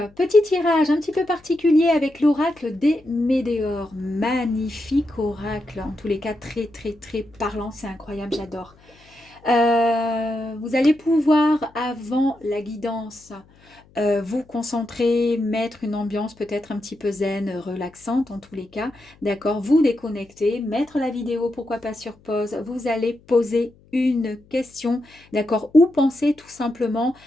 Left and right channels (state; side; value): noise; left; hum, 29 dB below the sound